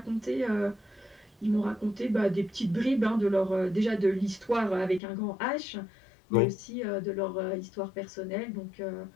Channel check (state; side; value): drops out; right; at 5.0 s